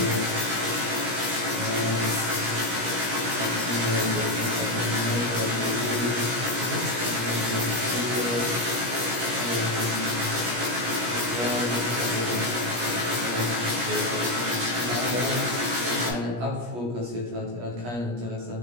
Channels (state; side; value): late; left; 17 ms